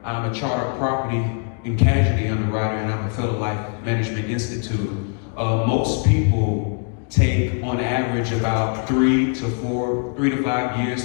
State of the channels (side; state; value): right; quieter; 39.7 dB